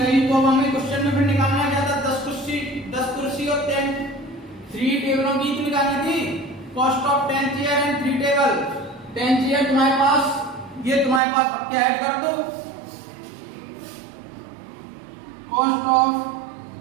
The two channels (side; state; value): left; drops out; at 11.2 s